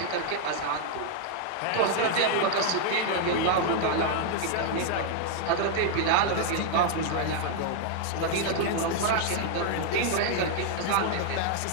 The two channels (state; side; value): different; both; correlation 0.00